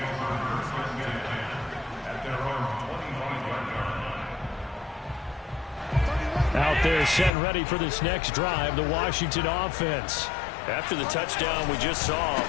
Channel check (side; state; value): right; drops out; at 7.3 s